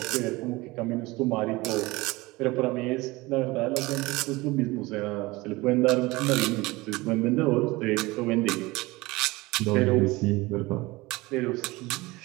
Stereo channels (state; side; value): quieter; left; 21.6 dB